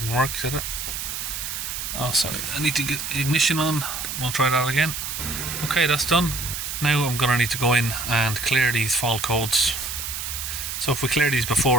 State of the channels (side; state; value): right; noise; hiss, 5 dB below the sound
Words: work, did it? Oh, sorry, I need to get ignition on. We'll try that again. Okay, that's done. Now I'm going to need to go in and clear these fault codes. So if we clear these